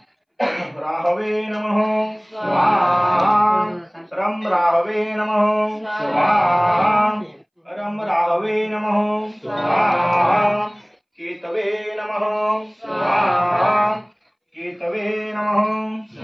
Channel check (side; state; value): both; identical; correlation 1.00